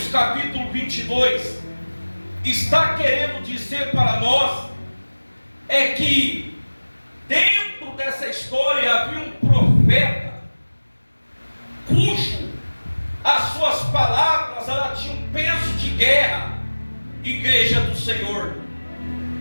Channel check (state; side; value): inverted; both; correlation -1.00